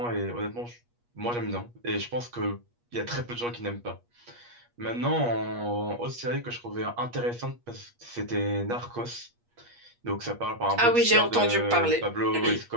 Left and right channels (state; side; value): late; left; 8.4 ms